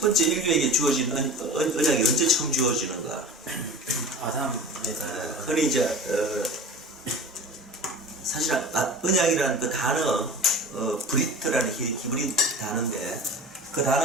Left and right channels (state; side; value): normal; both; correlation 0.36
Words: 번째 인류에게 주어진 언약이 언제 처음 주어지는가? 아담에서 흔히 이제 사실 언약이라는 그 단어 브리트라는 히브리 단어인데 그